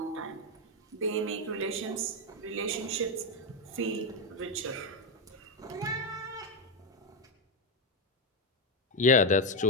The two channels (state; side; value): normal; both; correlation 0.07